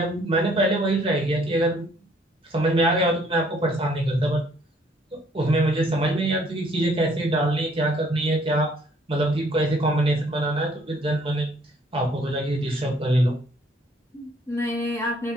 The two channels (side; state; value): both; normal; correlation 0.62